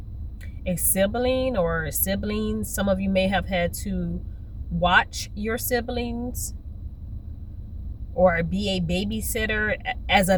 sibling or siblings. Some of you may have had to watch your siblings or be a babysitter as a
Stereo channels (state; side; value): identical; both; correlation 1.00